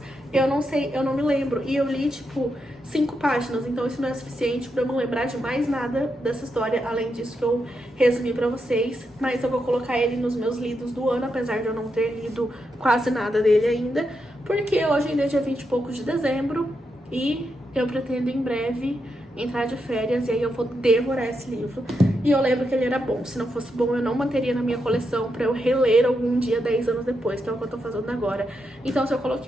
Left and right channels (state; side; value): normal; both; correlation 0.84